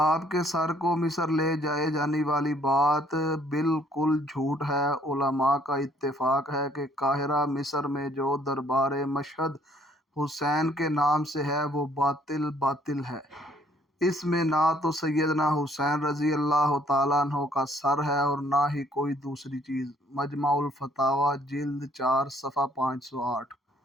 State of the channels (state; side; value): normal; both; correlation 0.63